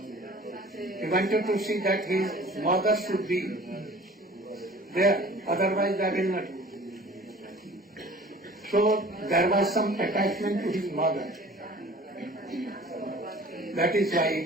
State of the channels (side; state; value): both; normal; correlation 0.47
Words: wanted to see that his mother should be there, otherwise I will not. So there was some attachment to his mother. That is why